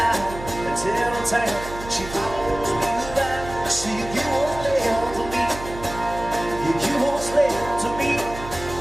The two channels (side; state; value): right; noise; hum, 12 dB below the sound